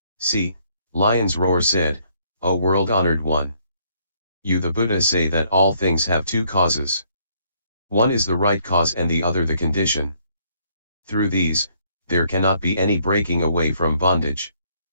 See, Lion's Roar said, O world-honored one. You the Buddha say that all things have two causes. One is the right cause and the other the condition. Through these, there cannot be any breaking away from bondage.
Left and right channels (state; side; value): inverted; both; correlation -0.68